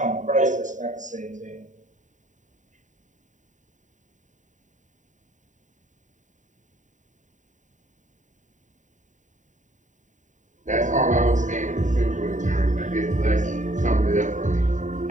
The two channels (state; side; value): late; left; 0.36 ms